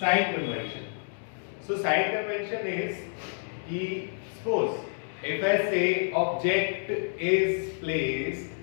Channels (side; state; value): right; silent; digital silence